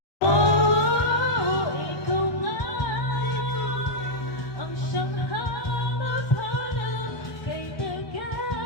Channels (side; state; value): right; late; 1.1 ms